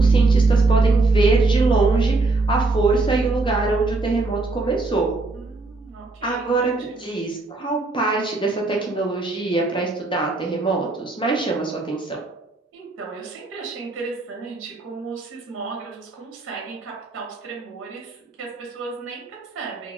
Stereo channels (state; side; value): quieter; left; 3.3 dB